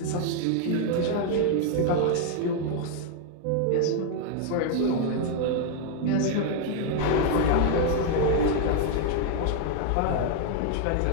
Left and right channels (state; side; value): different; both; correlation 0.00